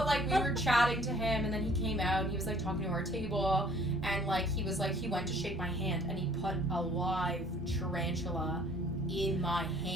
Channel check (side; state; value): left; noise; rumble, 19 dB below the sound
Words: like we were chatting to him, and then he came out and he was like talking to our table, and like he was like he went to shake my hand and he put a live tarantula in my